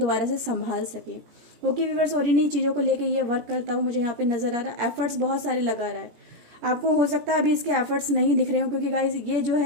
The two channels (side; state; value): left; late; 17 ms